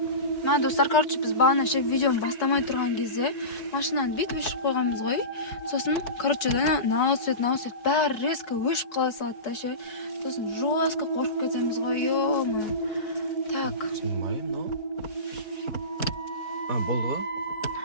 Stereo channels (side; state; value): right; late; 5.0 ms